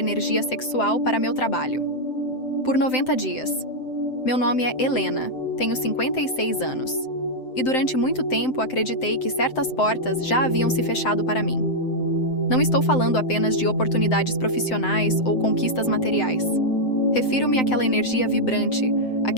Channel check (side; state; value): right; late; 7.8 ms